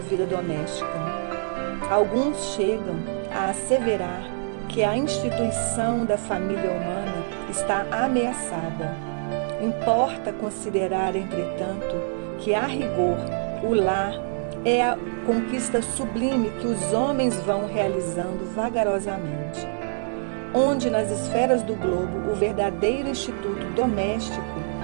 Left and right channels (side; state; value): left; silent; digital silence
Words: vida doméstica. Alguns chegam a asseverar que a instituição da família humana está ameaçada. Importa considerar, entretanto, que a rigor o lar é a conquista sublime que os homens vão realizando vagarosamente, onde nas esferas do globo o verdadeiro instituto doméstico,